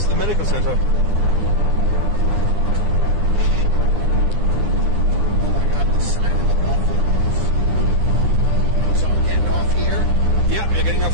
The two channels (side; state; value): left; late; 9.9 ms